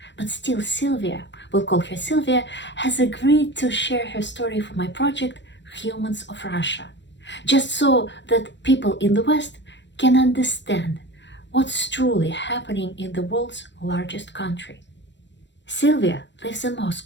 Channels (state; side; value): late; right; 0.52 ms